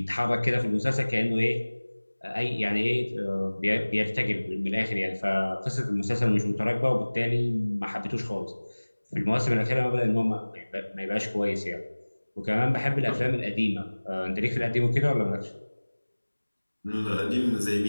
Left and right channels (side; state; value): both; inverted; correlation -1.00